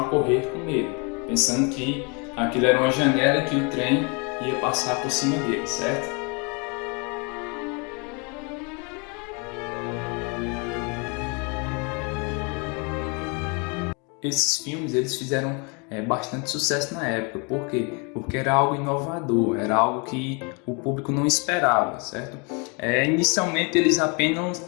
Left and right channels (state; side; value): quieter; right; 32.7 dB